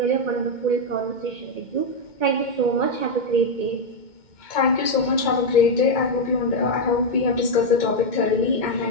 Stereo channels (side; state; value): right; late; 2.2 ms